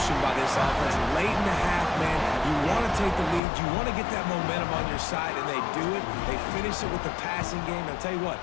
by this offense. Late in the half, man, you want to take the lead. You want to get that momentum on your side, and they do it. They finish it with the passing game. I'll tell you what,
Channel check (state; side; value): drops out; right; at 3.4 s